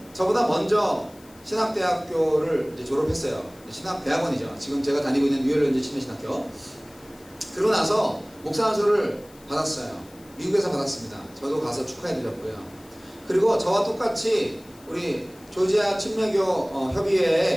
저보다 먼저 신학대학교를 이제 졸업했어요. 신학대학원이죠. 지금 제가 다니고 있는 뉴열랜드 침례신학교. 그러고 나서 목사 안수를 받았어요. 미국에서 받았습니다. 저도 가서 축하해드렸고요. 그리고 저와 똑같이 우리 조지아 침례교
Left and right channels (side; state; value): left; noise; hiss, 26 dB below the sound